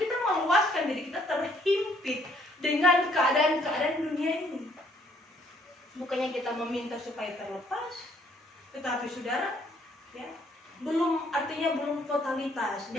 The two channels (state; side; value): normal; both; correlation 0.65